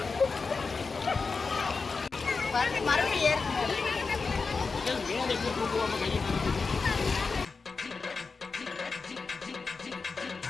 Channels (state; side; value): quieter; right; 4.5 dB